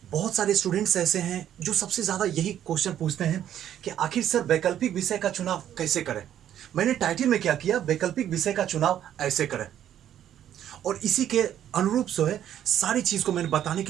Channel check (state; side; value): quieter; left; 10.7 dB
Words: बहुत सारे स्टूडेंट्स ऐसे हैं जो सबसे ज्यादा यही क्वेश्चन पूछते हैं कि आखिर सर वैकल्पिक विषय का चुनाव कैसे करें। मैंने टाइटल में क्या किया, वैकल्पिक विषय का चुनाव ऐसे करें। और इसी के अनुरूप जो है सारी चीज को मैंने बताने